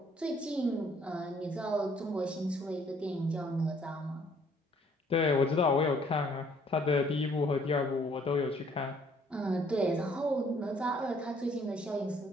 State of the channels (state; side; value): normal; both; correlation 0.62